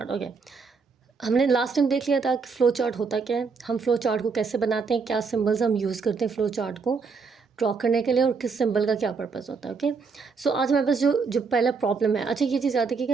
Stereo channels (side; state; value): left; quieter; 5.0 dB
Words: Okay. हमने last time देख लिया था कि flow chart होता क्या है, हम flow chart को कैसे बनाते हैं, क्या सिंबल्स हम यूज़ करते हैं फ्लो चार्ट को ड्रॉ करने के लिए और किस सिंबल का क्या पर्पस होता है। ओके, सो आज हमारे पास जो पहला प्रॉब्लम है, अच्छा ये चीज़ याद है कि